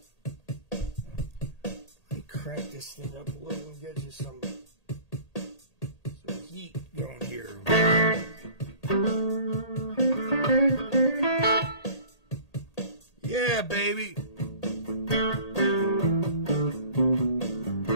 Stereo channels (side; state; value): right; late; 1.8 ms